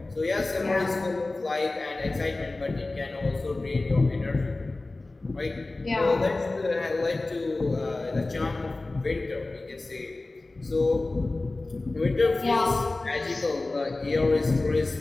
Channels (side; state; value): right; quieter; 3.1 dB